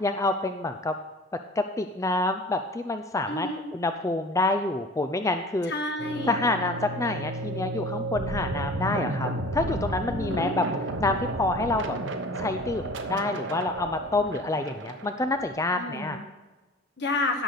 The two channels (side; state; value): both; normal; correlation 0.42